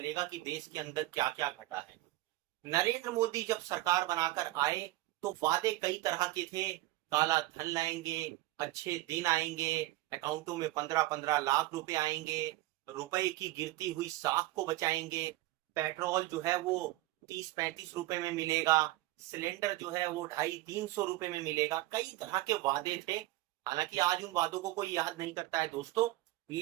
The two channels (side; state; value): left; quieter; 17.8 dB